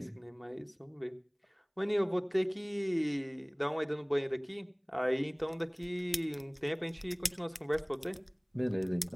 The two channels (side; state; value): both; identical; correlation 1.00